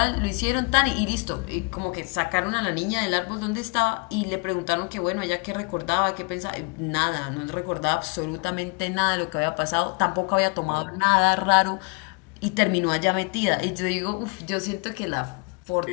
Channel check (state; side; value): quieter; right; 33.4 dB